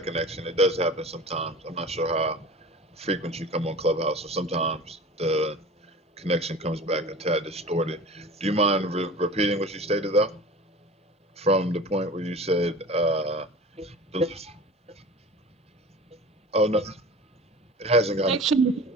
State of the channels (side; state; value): both; normal; correlation 0.38